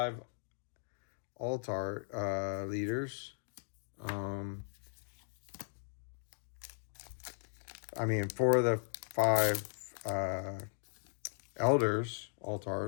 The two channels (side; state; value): right; silent; digital silence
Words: alt art leaders. I mean, 4 of the 5 elders alt